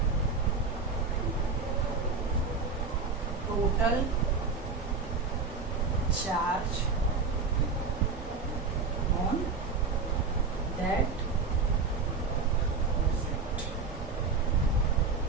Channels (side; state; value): left; quieter; 4.6 dB